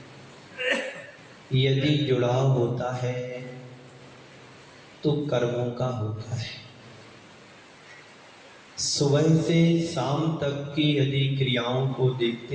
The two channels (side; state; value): both; identical; correlation 1.00